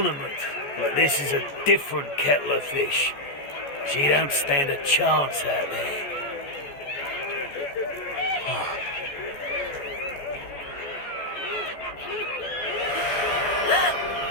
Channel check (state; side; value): late; right; 14 ms